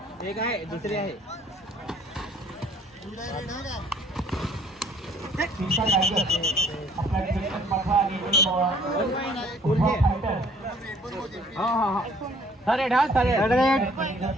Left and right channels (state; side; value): normal; both; correlation 0.58